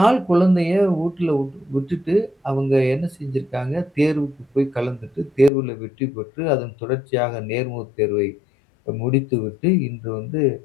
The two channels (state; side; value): drops out; right; at 5.5 s